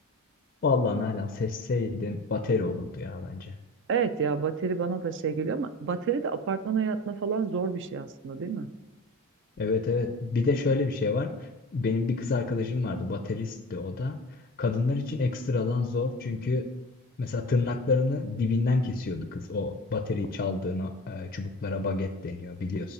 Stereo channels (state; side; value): normal; both; correlation 0.36